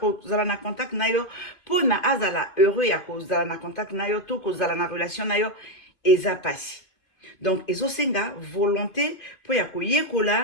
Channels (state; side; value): late; right; 2.5 ms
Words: na contact na yo pona azala heureux ya kozala na contact na yo to kozala na relation na yo eza pasi. Donc ezosenga volonté po ya